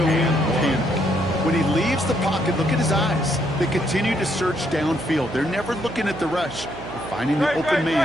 panic. When he leaves the pocket, look at his eyes. They continue to search downfield. They're never looking at the rush. They're finding the open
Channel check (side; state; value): right; noise; hum, 13 dB below the sound